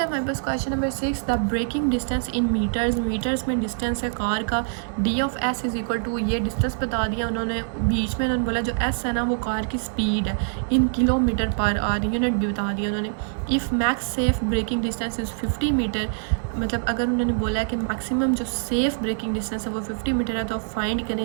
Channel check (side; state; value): left; silent; 62 dB below the other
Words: है हमारे पास question number 6, the braking distance in metres में डिस्टेंस है कार का, d of s is equal to, ये डिस्टेंस बता दिया उन्होंने, बीच में उन्होंने बोला जो एस है ना वो कार की स्पीड है, in kilometre per hour, unit भी बता दिया उन्होंने। If max safe braking distance is 50 metre, मतलब अगर उन्होंने बोला है कि मैक्सिमम जो सेफ़ ब्रेकिंग डिस्टेंस है वो 50 मीटर है, तो आप फाइंड